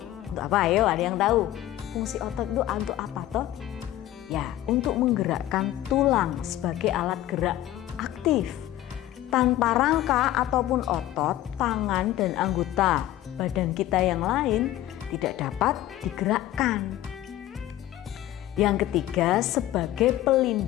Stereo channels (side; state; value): right; quieter; 14.0 dB